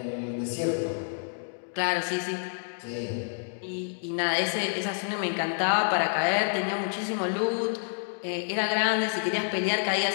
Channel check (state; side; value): silent; right; digital silence